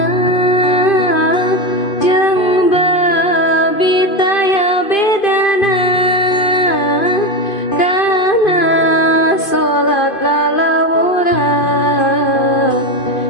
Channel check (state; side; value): late; right; 2.5 ms